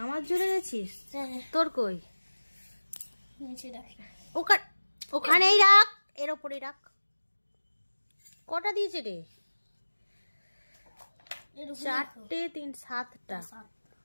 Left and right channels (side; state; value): both; inverted; correlation -1.00